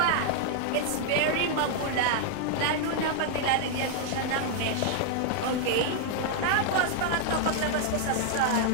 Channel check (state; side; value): different; both; correlation 0.00